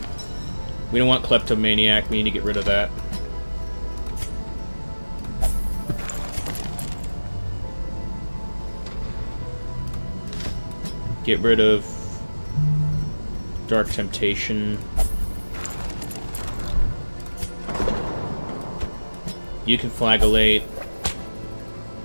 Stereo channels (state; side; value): inverted; both; correlation -1.00